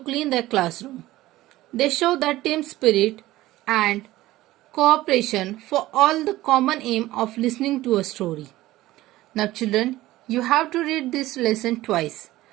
clean their classroom. They show their team spirit and cooperation for all the common aim of listening to a story. Now children, you have to read this lesson twice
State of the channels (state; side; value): quieter; left; 16.6 dB